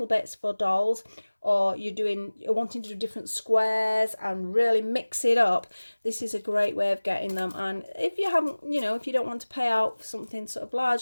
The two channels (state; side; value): inverted; both; correlation -1.00